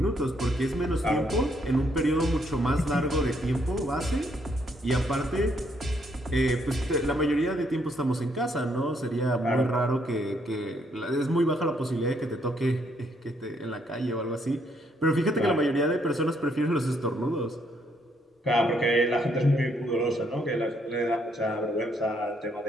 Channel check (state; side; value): normal; both; correlation 0.72